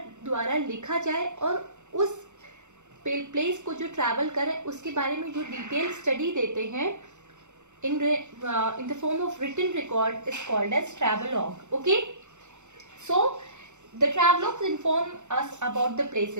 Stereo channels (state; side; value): late; left; 0.84 ms